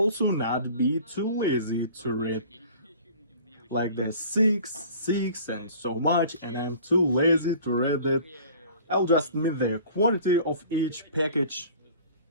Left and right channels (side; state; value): both; inverted; correlation -0.46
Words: not be too lazy to read like the 6, 6 and so much, and I'm too lazy to read it. I'll just meet the quantity of each package.